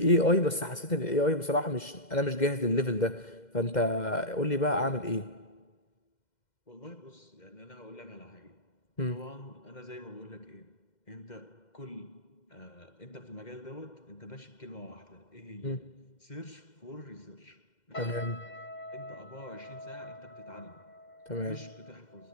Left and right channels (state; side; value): late; right; 2.1 ms